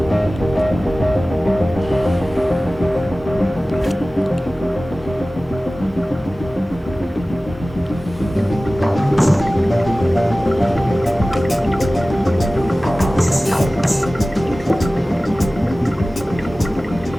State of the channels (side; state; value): both; normal; correlation 0.97